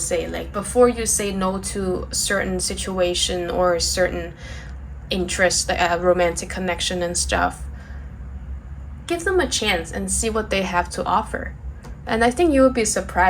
Like, before you say no to a certain situation or a certain interest, like a romantic connection and stuff, give them a chance and see what they have to offer. And I think you will be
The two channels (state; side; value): identical; both; correlation 1.00